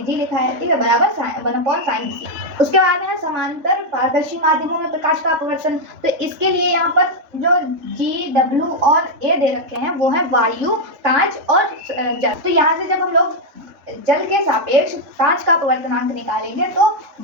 g लिखा है। ठीक है, बराबर 1/sin c। उसके बाद में है समांतर पारदर्शी माध्यमों में प्रकाश का अपवर्तन। तो इसके लिए यहाँ पर जो g, w और a दे रखे हैं वो है वायु, कांच और जल। तो यहाँ से जब हम लोग जल के सापेक्ष कांच का अपवर्तनांक निकालेंगे तो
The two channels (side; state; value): left; late; 3.7 ms